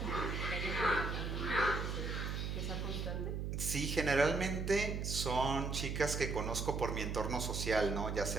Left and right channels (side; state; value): right; noise; hum, 2 dB below the sound